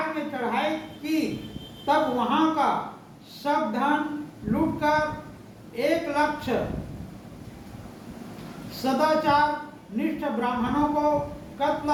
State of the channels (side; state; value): both; identical; correlation 1.00